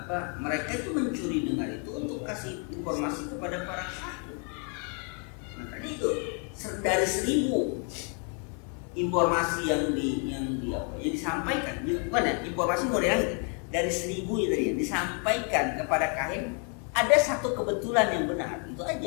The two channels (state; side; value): quieter; right; 39.6 dB